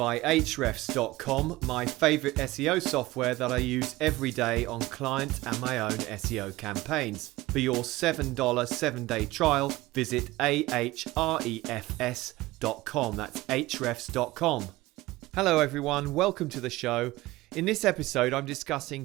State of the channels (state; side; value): quieter; left; 19.0 dB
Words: Ahrefs.com, my favourite SEO software that I use every day on client and my own SEO campaigns. For your $7 7-day trial, visit ahrefs.com. That's Ahrefs.com. Hello everyone, welcome to the show. In this episode, I'm